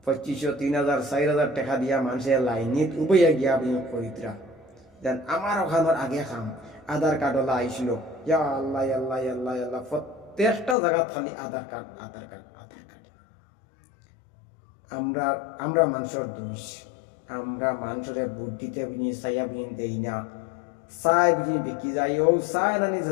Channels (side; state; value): right; drops out; at 10.8 s